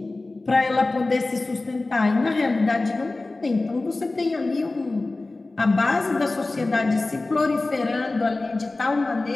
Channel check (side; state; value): right; quieter; 3.2 dB